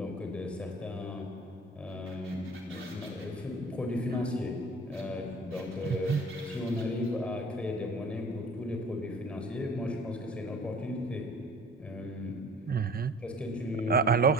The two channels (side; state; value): both; normal; correlation 0.47